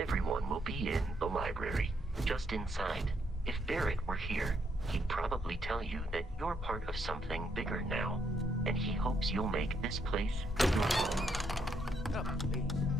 everyone will be in the library, just inside. If Barrett were here, he'd probably tell you that you're part of something bigger now, and he hopes you'll make this place your home. Oh, please.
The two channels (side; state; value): both; normal; correlation 0.75